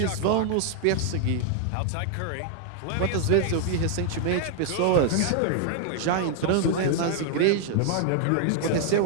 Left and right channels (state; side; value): different; both; correlation 0.00